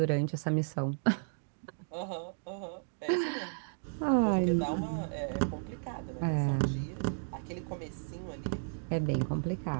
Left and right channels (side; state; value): left; silent; digital silence